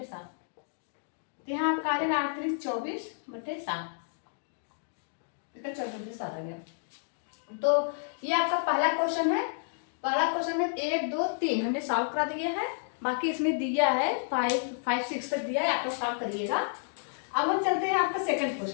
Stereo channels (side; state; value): right; silent; digital silence